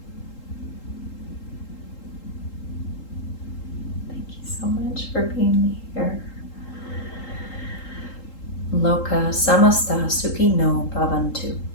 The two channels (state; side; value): late; right; 3.8 ms